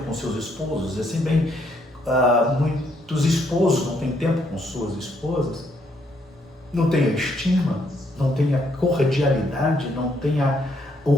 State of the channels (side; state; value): both; normal; correlation 0.72